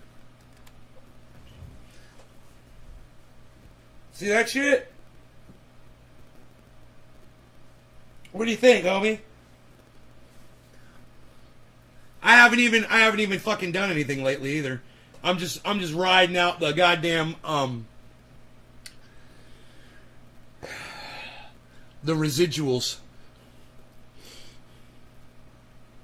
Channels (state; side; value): identical; both; correlation 1.00